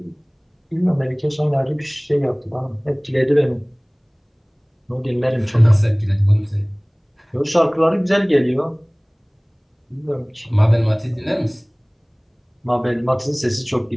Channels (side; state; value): both; identical; correlation 1.00